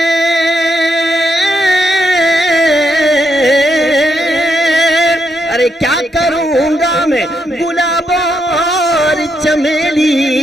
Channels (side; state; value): both; normal; correlation 0.79